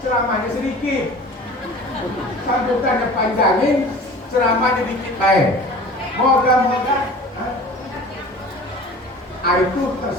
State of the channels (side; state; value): both; normal; correlation 0.42